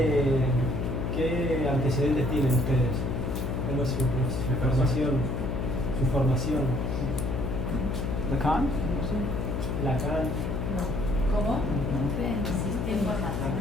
¿Qué antecedentes tienen ustedes? ¿Cuál es su formación? Lacan? Lacan. No. ¿Cómo? No. Sistema.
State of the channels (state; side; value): noise; left; hum, 2 dB below the sound